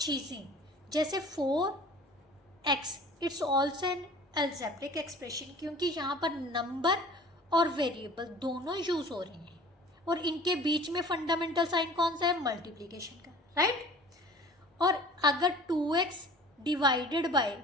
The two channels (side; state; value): both; normal; correlation 0.45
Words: जैसे 4x, it's also an algebraic expression, क्योंकि यहाँ पर नंबर और वेरिएबल दोनों यूज़ हो रहे हैं और इनके बीच में फंडामेंटल साइन कौन सा है? मल्टीप्लिकेशन का, राइट? और अगर 2x divided by